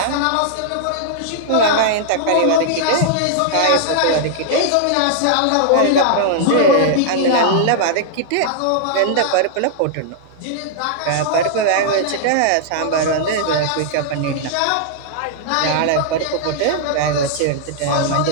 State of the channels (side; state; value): both; different; correlation -0.01